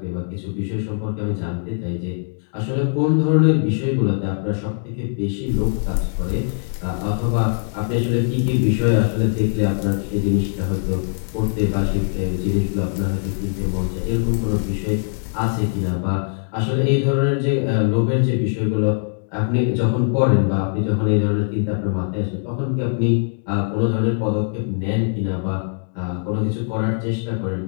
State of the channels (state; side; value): silent; right; digital silence